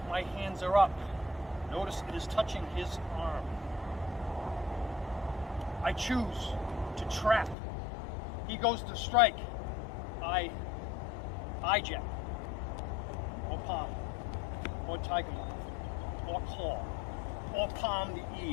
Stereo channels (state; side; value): drops out; right; at 7.6 s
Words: my hands are up. Notice it is touching his arm. I choose to trap. He goes to strike. I jab, or palm, or tiger moth, or claw, or palm the